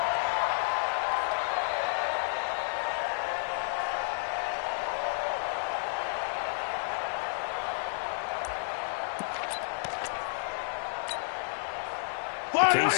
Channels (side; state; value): right; silent; digital silence